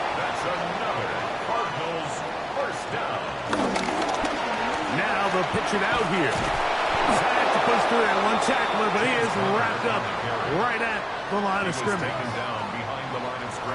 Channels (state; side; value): identical; both; correlation 1.00